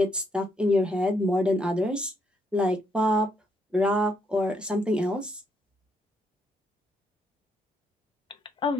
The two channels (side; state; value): both; normal; correlation 0.74